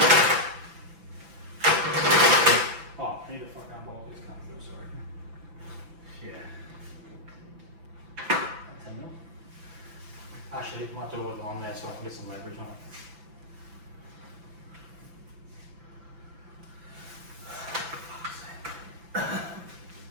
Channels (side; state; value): left; late; 5.9 ms